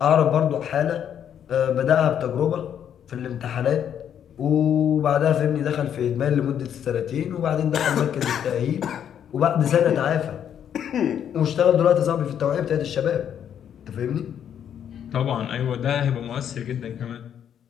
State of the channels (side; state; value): right; quieter; 9.1 dB